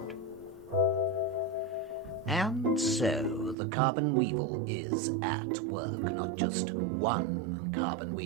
And so the carbon weevil is at work, not just one carbon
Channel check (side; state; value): left; drops out; at 3.6 s